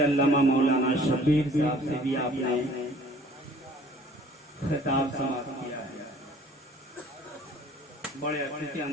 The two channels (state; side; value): normal; both; correlation 0.53